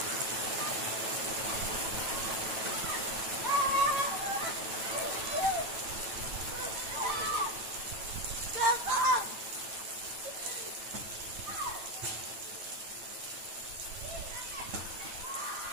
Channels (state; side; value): late; left; 9.0 ms